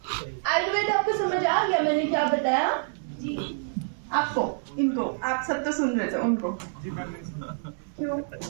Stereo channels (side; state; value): left; silent; 60 dB below the other